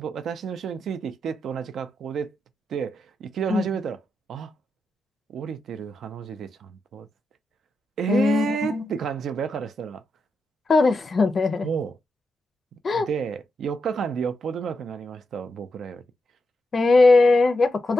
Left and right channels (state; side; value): normal; both; correlation 0.86